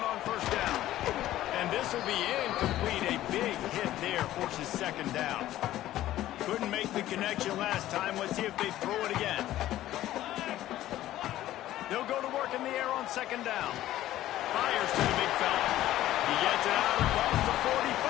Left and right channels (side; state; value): right; quieter; 14.1 dB